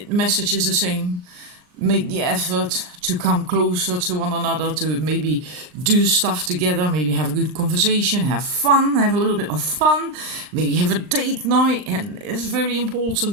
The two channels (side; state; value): left; late; 39 ms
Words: message is the same. Make the effort to come closer to one another, to maybe do stuff together, maybe have a good conversation, have fun, have a little bit of fun, maybe have a date night. And it's very important